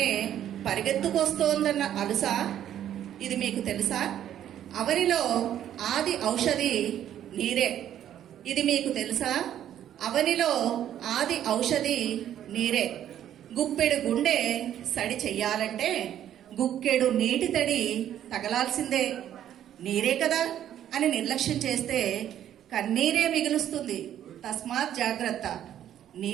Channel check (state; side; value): quieter; left; 10.9 dB